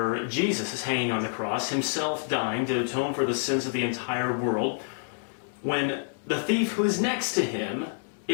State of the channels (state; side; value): silent; right; digital silence